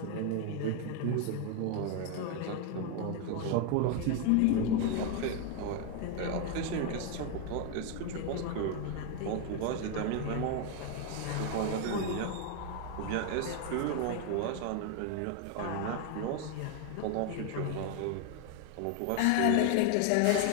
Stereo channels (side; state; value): both; different; correlation 0.01